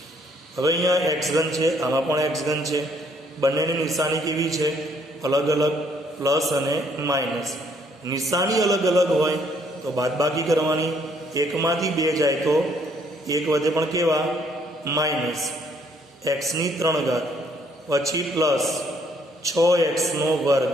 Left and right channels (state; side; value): normal; both; correlation 0.66